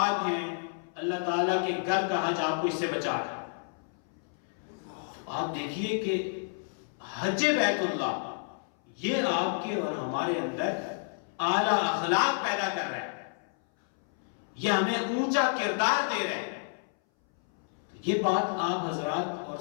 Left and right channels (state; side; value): silent; right; 58 dB below the other